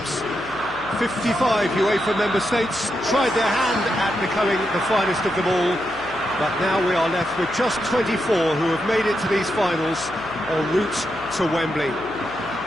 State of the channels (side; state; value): left; noise; hum, 21 dB below the sound